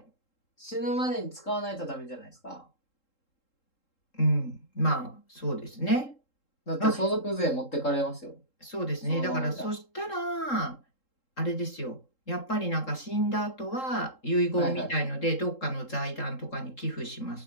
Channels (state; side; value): late; right; 3.7 ms